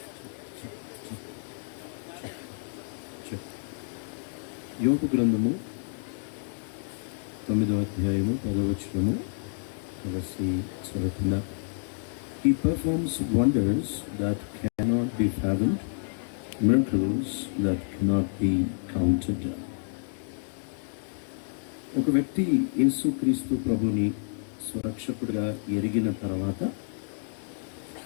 యోబు గ్రంథము 9వ అధ్యాయము 10వ వచనము కలిసి చదువుకుందాం. He performs wonders that cannot be fathomed, miracles that cannot be counted. ఒక వ్యక్తి యేసుక్రీస్తు ప్రభుని సురక్షకుడిగా ఎరిగిన తర్వాత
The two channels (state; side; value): silent; right; digital silence